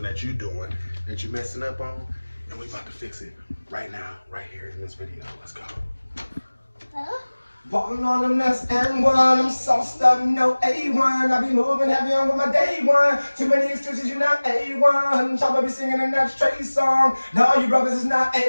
that you're doing, that you're messing up on, and we about to fix it right now, right here in this video. Let's go. Ballin' on them, that's N1. I'm sauced up, no A1. I be moving heavy on with my day one. Too many excuses, you're not A1. Chopper be singing and that's Trey song. No, you brothers is not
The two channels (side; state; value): both; inverted; correlation -1.00